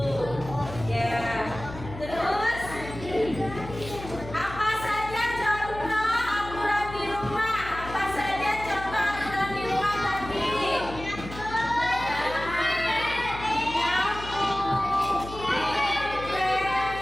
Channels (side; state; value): left; noise; hum, 12 dB below the sound